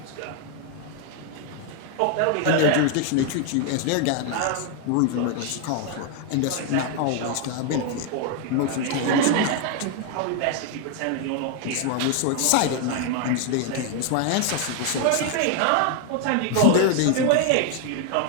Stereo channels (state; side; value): different; both; correlation 0.01